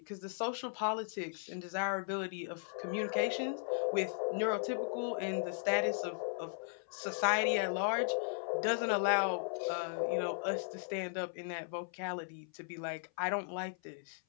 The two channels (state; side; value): silent; right; 53 dB below the other